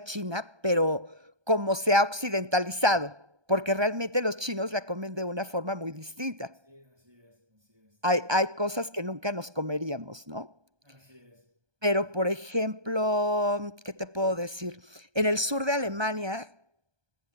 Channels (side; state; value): left; late; 1.2 ms